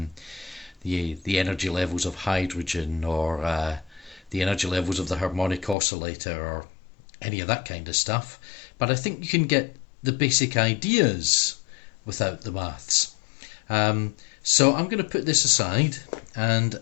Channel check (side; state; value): right; drops out; at 5.8 s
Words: the energy levels of hydrogen or the energy levels of the harmonic oscillator or any of that kind of stuff. But I think you can get the basic ideas without the maths. So I'm going to put this aside, and